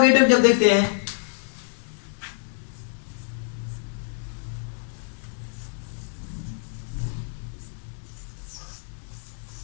जब देखते हैं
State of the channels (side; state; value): right; silent; digital silence